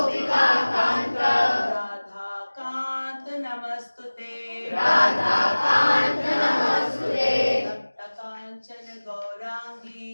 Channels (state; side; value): inverted; both; correlation -1.00